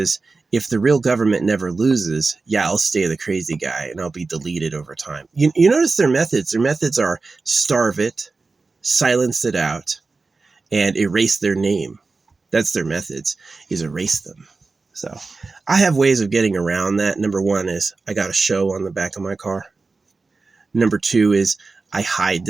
if the real government never loses, yeah, I'll stay the crazy guy and I'll be deleted over time. You notice their methods. Their methods are starve it, silence it out, and erase their name. That's their methods, is erase them. So I have ways of getting around that. Number one is I got a show on the back of my car. Number two is I hide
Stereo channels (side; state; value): left; quieter; 4.0 dB